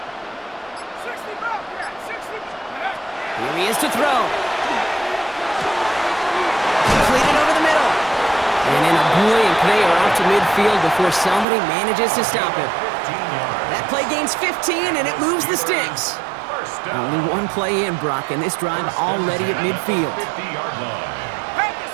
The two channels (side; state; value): left; drops out; at 11.5 s